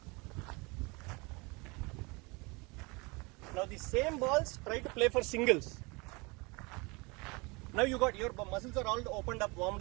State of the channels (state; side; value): quieter; left; 27.4 dB